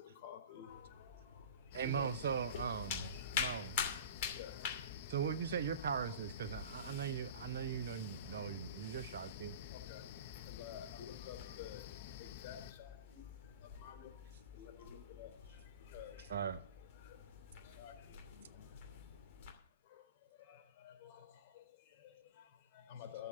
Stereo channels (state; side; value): inverted; both; correlation -0.36